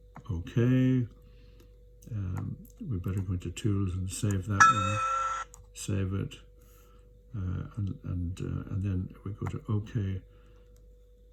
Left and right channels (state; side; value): identical; both; correlation 1.00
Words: okay. We better go into Tools and save that one. Save it. And then we go to OK,